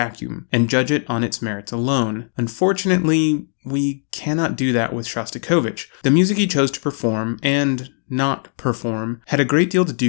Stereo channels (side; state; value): right; silent; 60 dB below the other